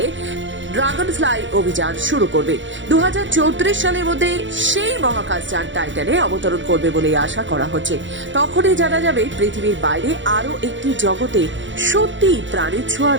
ড্রাগন ফ্লাই অভিযান শুরু করবে। 2034 সালের মধ্যে সেই মহাকাশযান টাইটানে অবতরণ করবে বলে আশা করা হচ্ছে। তখনই জানা যাবে পৃথিবীর বাইরে আরও একটি জগতে সত্যি প্রাণের ছোঁয়া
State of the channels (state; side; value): late; left; 0.55 ms